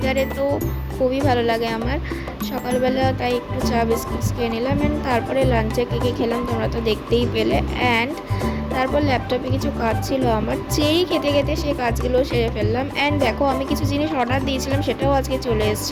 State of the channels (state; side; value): identical; both; correlation 1.00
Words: তো খুবই ভালো লাগে আমার। সকালবেলা তাই একটু চা বিস্কিটস খেয়ে নিলাম, অ্যান্ড তারপরে লাঞ্চে কী খেলাম তোমরা তো দেখতেই পেলে। অ্যান্ড তারপর ল্যাপটপে কিছু কাজ ছিল আমার, চেরি খেতে খেতে সেই কাজগুলো সেরে ফেললাম। অ্যান্ড দেখো, আমি কিছু জিনিস অর্ডার দিয়েছিলাম সেটাও আজকে চলে